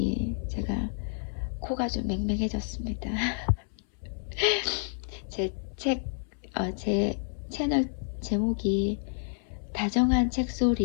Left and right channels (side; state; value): right; silent; 58 dB below the other